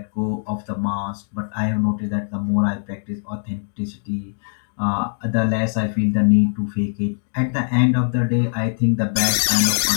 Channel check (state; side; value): silent; right; digital silence